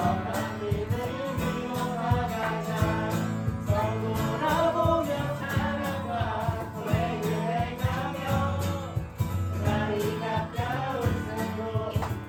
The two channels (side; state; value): both; identical; correlation 1.00